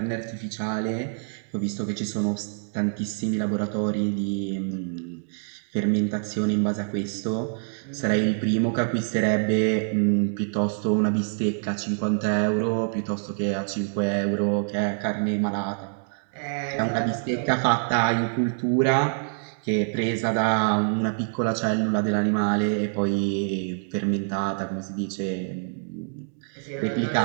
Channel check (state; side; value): silent; left; digital silence